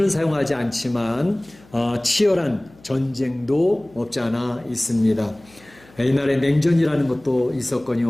사용하지 않지만 치열한 전쟁도 없지 않아 있습니다. 옛날에 냉전이라는 것도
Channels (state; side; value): noise; left; hum, 26 dB below the sound